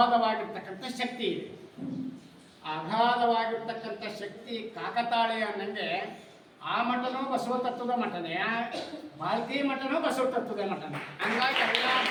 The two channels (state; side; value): identical; both; correlation 1.00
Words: ಶಕ್ತಿ ಇದೆ. ಅಗಾಧವಾಗಿರ್ತಕ್ಕಂಥ ಶಕ್ತಿ ಕಾಕತಾಳೀಯ ಅನ್ನಂಗೆ ಆ ಮಠನೂ ಬಸವ ತತ್ವದ ಮಠನೇ, ಬಾಲ್ಕಿ ಮಠನೂ ಬಸವ ತತ್ವದ ಮಠನೇ. ಹಂಗಾಗಿ ಎಲ್ಲ